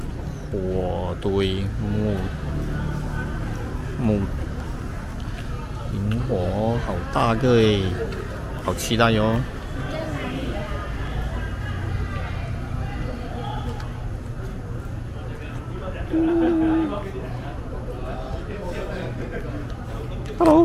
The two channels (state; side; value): identical; both; correlation 1.00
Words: 火堆木萤火哦，好大个诶，好期待哟、哦。